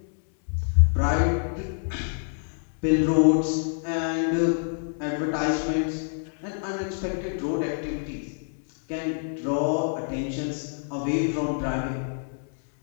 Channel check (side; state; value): right; silent; digital silence